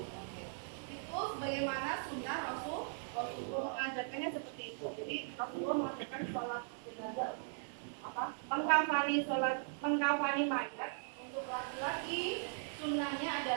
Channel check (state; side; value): silent; left; digital silence